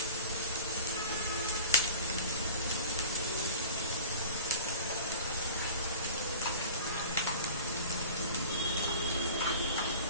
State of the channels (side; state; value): both; inverted; correlation -0.38